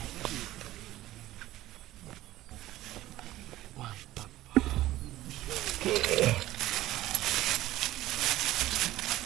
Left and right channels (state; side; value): quieter; left; 15.5 dB